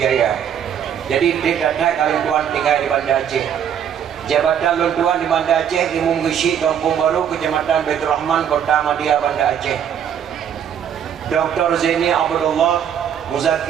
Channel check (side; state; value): left; quieter; 8.8 dB